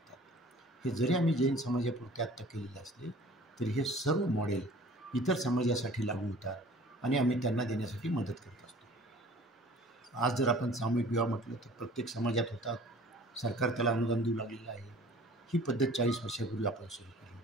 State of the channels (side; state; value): both; normal; correlation 0.48